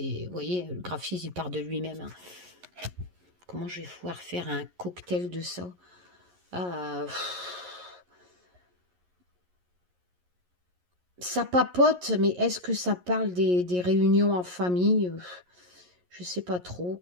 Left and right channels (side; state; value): left; late; 11 ms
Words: voyez, le graphisme, il part de lui-même. Hein. Comment je vais pouvoir faire un cocktail de ça? Ça papote, mais est-ce que ça parle des réunions en famille? Je sais pas trop.